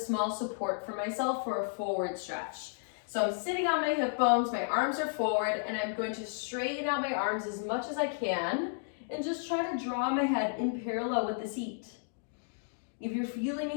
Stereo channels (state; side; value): silent; right; digital silence